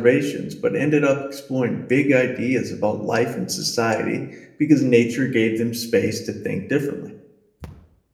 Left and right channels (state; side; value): identical; both; correlation 1.00